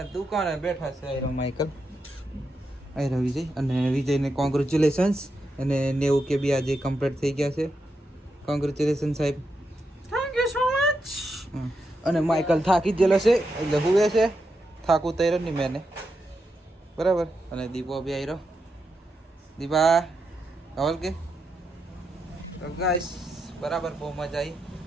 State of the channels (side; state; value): both; normal; correlation 0.85